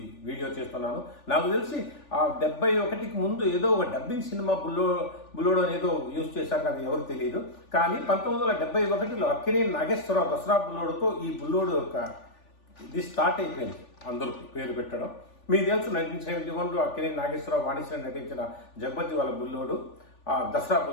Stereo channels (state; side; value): late; right; 3.4 ms